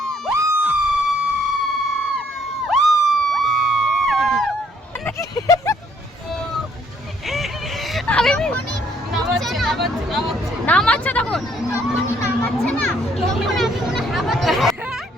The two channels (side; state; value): both; normal; correlation 0.66